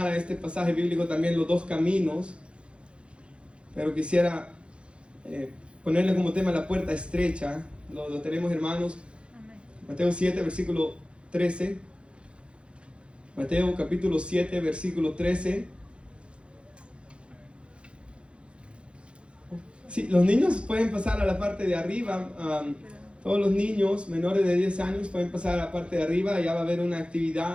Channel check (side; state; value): left; late; 0.058 ms